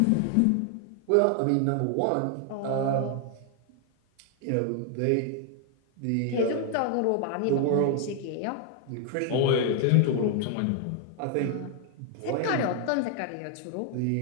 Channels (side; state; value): both; different; correlation 0.00